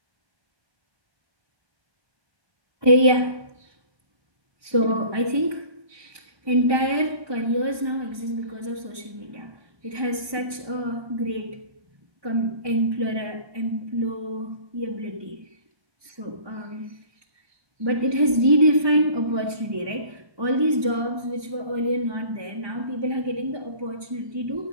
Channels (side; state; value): left; late; 1.3 ms